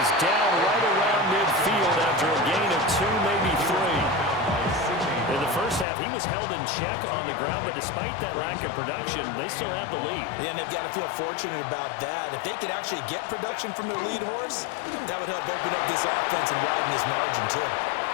he's down right around midfield after a gain of 2, maybe 3. In the first half, he was held in check on the ground, but despite that lack of production, they still have the lead. Yeah, and they've got to feel fortunate about that. If they could actually get production from their lead horse, that would help open up this offense and widen this margin, too.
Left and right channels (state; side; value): drops out; right; at 5.9 s